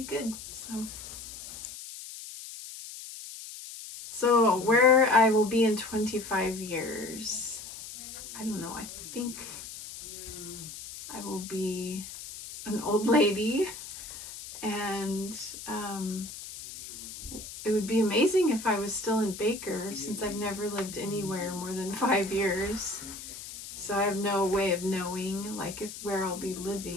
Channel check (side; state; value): left; noise; hiss, 11 dB below the sound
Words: good. So where I will be in 25 years, I don't know. I think I will be an old lady, and it would be amazing if I was still in Baker, since I've never lived anywhere more than 5 years. So I have no way of knowing where I'll be